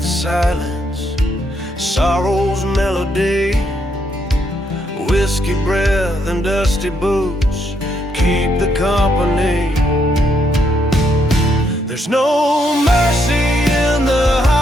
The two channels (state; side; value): normal; both; correlation 0.75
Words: silence, sorrow's melody. Whiskey breath and dusty boots keep the company. There's no mercy in the